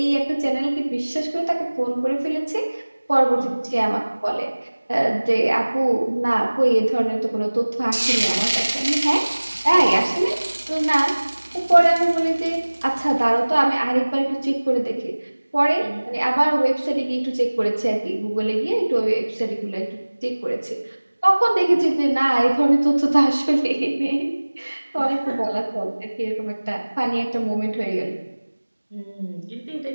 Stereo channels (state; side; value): inverted; both; correlation -1.00